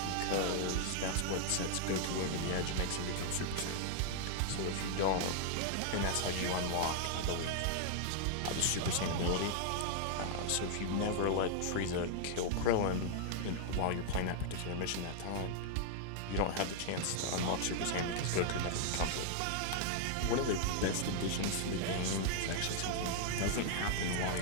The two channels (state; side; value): different; both; correlation 0.00